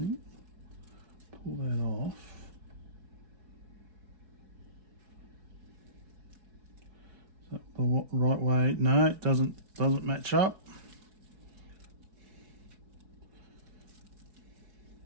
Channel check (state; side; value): late; left; 5.1 ms